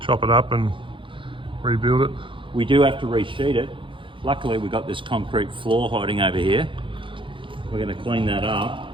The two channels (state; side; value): late; left; 0.25 ms